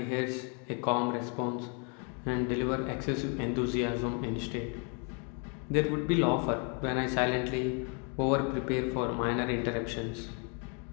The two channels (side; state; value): right; quieter; 37.2 dB